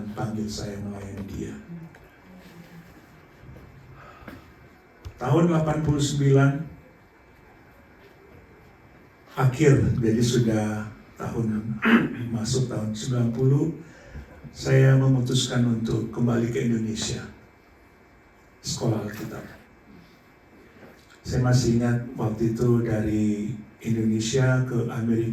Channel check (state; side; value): identical; both; correlation 1.00